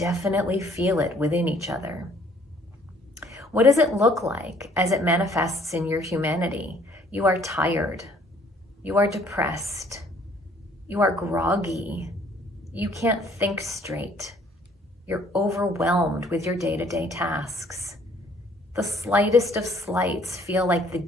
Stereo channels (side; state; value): both; normal; correlation 0.60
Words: feel it within each other. What does it look like as it manifests in your humanity? You are tired. You are depressed. You are groggy. You can't think straight. You're overwhelmed with your day-to-day tasks. The slightest of slights feel like the